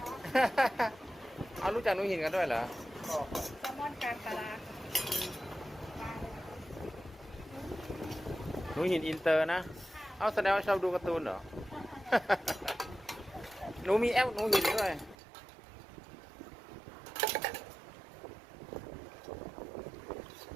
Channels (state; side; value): drops out; left; at 15.2 s